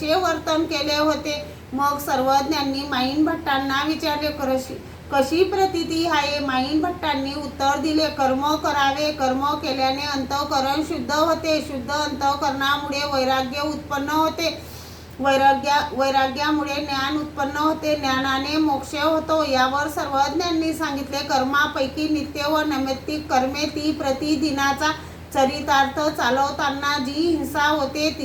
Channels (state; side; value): identical; both; correlation 1.00